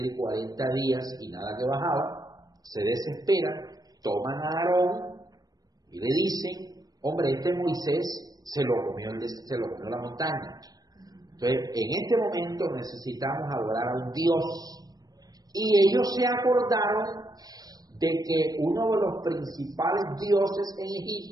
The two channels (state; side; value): late; left; 0.19 ms